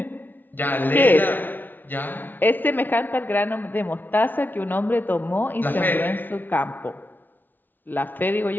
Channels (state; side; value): late; right; 0.089 ms